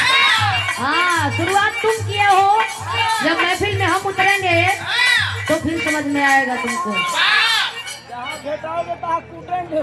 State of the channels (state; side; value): identical; both; correlation 1.00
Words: हाँ शुरुआत तुम किए हो, जब महफिल में हम उतरेंगे तो फिर समझ में आएगा तुमको।